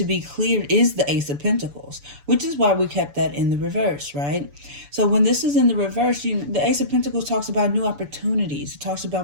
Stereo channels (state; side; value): late; left; 6.9 ms